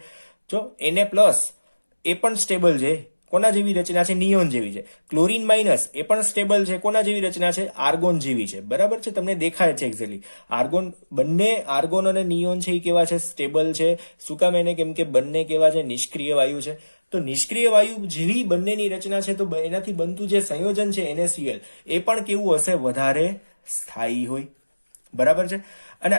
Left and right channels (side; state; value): both; inverted; correlation -1.00